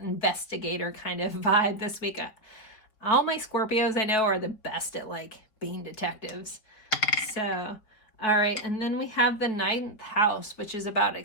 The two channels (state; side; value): late; right; 5.1 ms